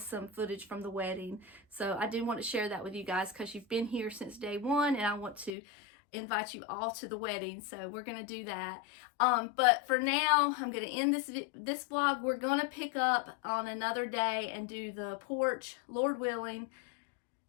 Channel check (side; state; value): right; drops out; at 5.5 s